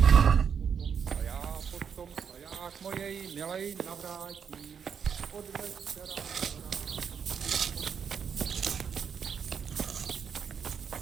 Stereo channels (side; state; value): left; quieter; 7.1 dB